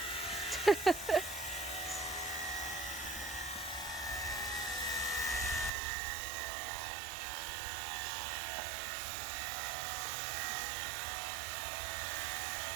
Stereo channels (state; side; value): drops out; left; at 5.7 s